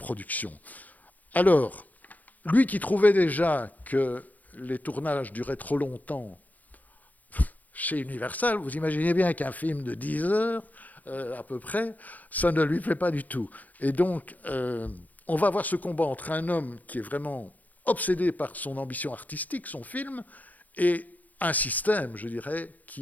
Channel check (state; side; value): late; right; 0.080 ms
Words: Alors, lui qui trouvait déjà que les tournages duraient trop longtemps chez Universal, vous imaginez bien qu'un film de 10 heures, à peu près, ça ne lui plaît pas du tout. Et donc, on va avoir ce combat entre un homme qui est vraiment obsédé par son ambition artistique, son film, et un système, je dirais,